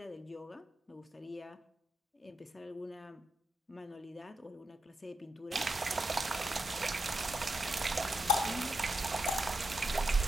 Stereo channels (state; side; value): normal; both; correlation 0.85